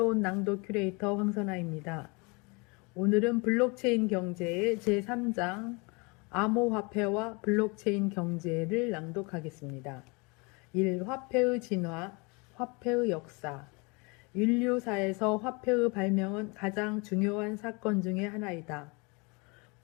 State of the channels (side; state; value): right; quieter; 29.1 dB